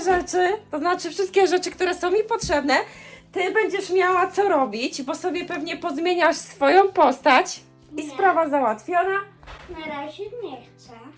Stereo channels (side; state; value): both; identical; correlation 1.00